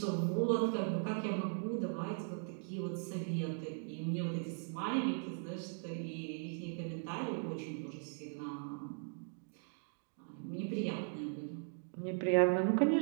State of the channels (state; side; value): silent; left; 52 dB below the other